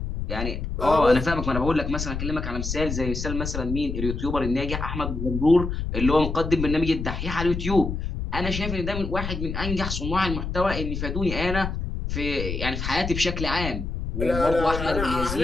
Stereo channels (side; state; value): left; noise; rumble, 4 dB below the sound